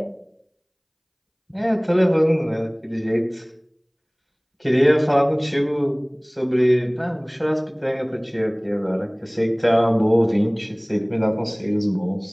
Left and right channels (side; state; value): both; identical; correlation 1.00